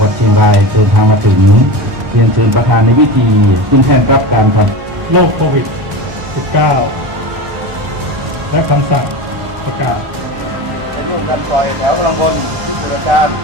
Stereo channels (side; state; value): left; late; 1.2 ms